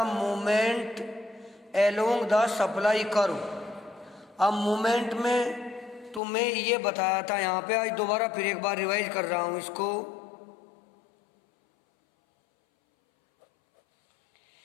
movement along the supply curve. अब मूवमेंट में तुम्हें ये बताया था, यहाँ पे आज दोबारा फिर एक बार रिवाइज कर रहा हूँ इसको।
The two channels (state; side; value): drops out; right; at 6.2 s